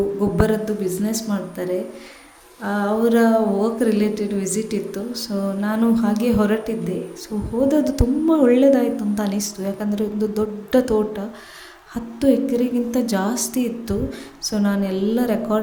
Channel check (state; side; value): identical; both; correlation 1.00